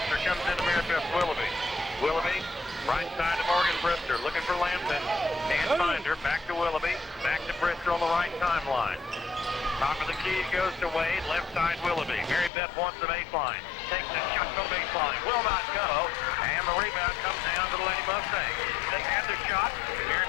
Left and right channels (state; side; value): drops out; right; at 12.5 s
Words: Comes into Mary Beth Willoughby. Willoughby, right side to Morgan Brister, looking for Lampton. Can't find her. Back to Willoughby. Back to Brister on the right timeline. Top of the key goes to Wade. Left side Willoughby. Mary Beth wants the baseline. Takes the shot to baseline. Will not go. And the rebound comes down to the Lady Mustang. They had the shot. Mary